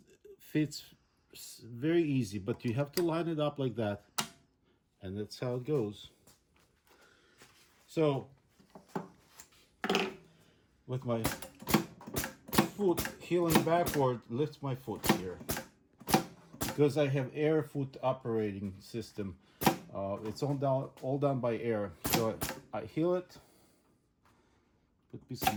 fits very easy, but you have to line it up like that. And that's how it goes. So with my foot heeling backward, lift my foot here. Because I have air foot operating system, it's all done by air. So I heel it, put a piece of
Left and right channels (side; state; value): both; identical; correlation 1.00